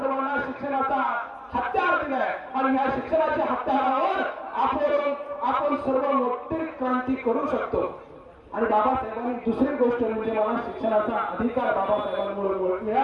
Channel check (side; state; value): both; identical; correlation 1.00